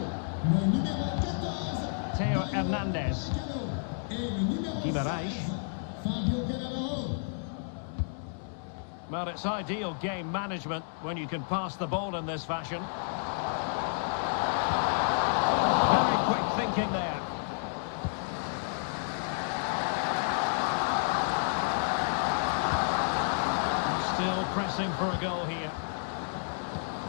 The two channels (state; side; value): silent; right; 57 dB below the other